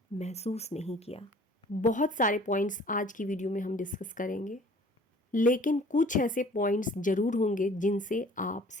महसूस नहीं किया। बहुत सारे पॉइंट्स आज की वीडियो में हम डिस्कस करेंगे, लेकिन कुछ ऐसे पॉइंट्स ज़रूर होंगे जिनसे आप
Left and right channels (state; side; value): normal; both; correlation 0.51